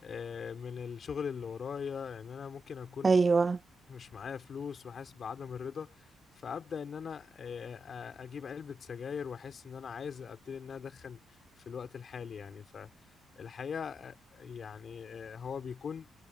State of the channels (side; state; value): both; normal; correlation 0.87